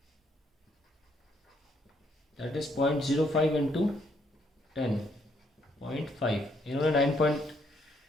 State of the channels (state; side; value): normal; both; correlation 0.71